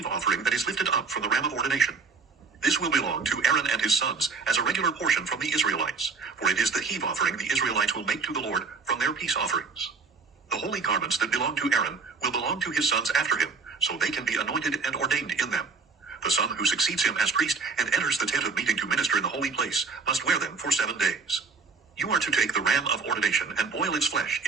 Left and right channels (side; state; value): left; quieter; 4.7 dB